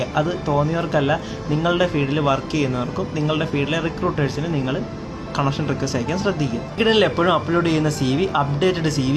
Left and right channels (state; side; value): identical; both; correlation 1.00